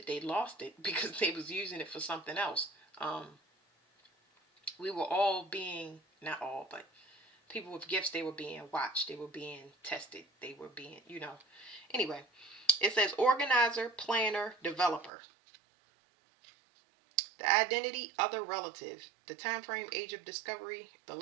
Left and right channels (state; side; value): drops out; left; at 15.1 s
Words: they lost it because they was using it for something else. We were all being, not all, but people with gifts, they were being watched. They were being tested. They were being, Anyway, it says organizer, planner, developer. The identity, other relative. The time frame, age of discovery. The